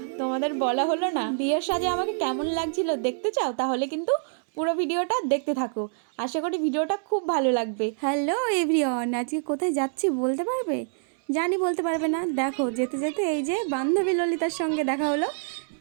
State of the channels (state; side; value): silent; left; digital silence